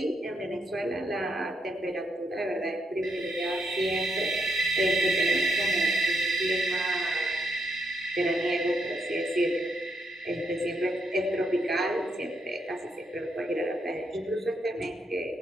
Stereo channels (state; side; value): normal; both; correlation 0.78